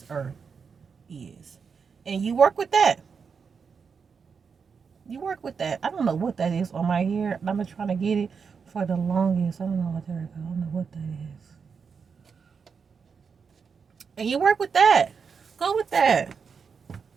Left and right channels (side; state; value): left; quieter; 5.9 dB